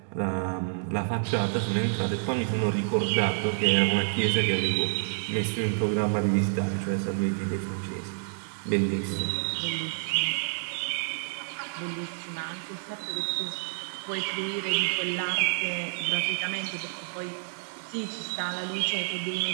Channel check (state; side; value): silent; left; digital silence